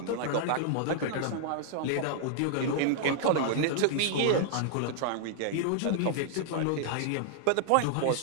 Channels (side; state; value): both; different; correlation -0.01